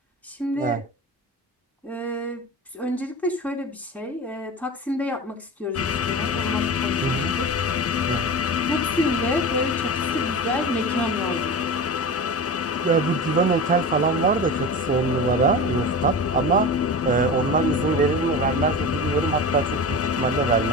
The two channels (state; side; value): normal; both; correlation 0.29